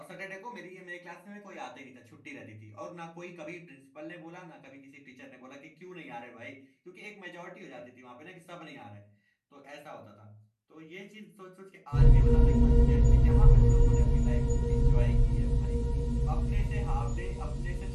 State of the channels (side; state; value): both; identical; correlation 1.00